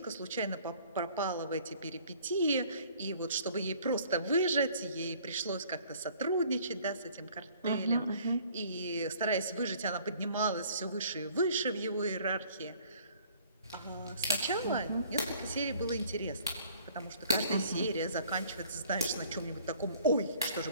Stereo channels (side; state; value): both; inverted; correlation -0.55